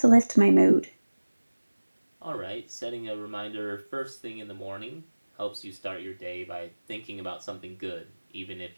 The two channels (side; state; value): both; inverted; correlation -1.00